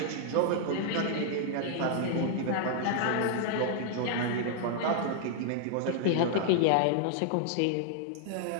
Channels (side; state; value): both; different; correlation -0.01